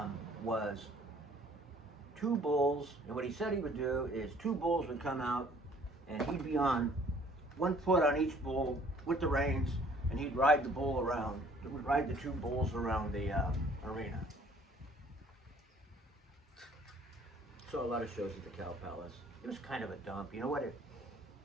was 2 bulls, and what he said he would do is 2 bulls would come out, and he'd be on 1 foot on each bull with the reins, and he'd ride the bull around. He would ride the 2 bulls around the arena. Saw a lot of shows at the Cow Palace. It was kind of a dump. You know what?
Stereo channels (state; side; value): normal; both; correlation 0.57